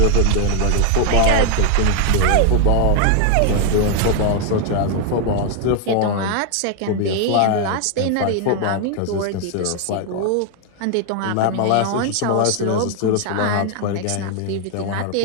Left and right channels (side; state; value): both; different; correlation 0.00